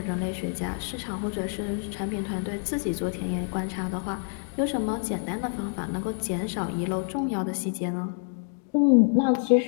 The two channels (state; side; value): silent; right; digital silence